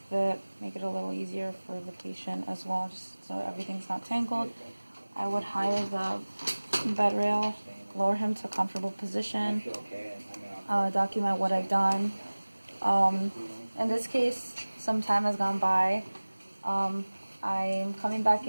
a bit, make it a little easier for the patient as well, just so everything's not tangled. I would higher the bed rail, lower him to a comfortable position, document what I've done. In this case, some time has gone by. I'm coming back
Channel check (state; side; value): inverted; both; correlation -1.00